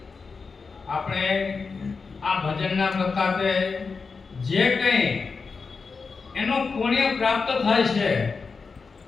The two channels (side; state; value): right; quieter; 4.8 dB